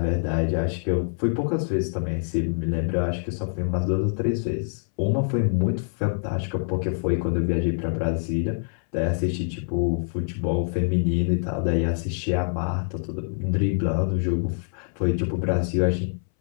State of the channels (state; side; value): silent; right; 60 dB below the other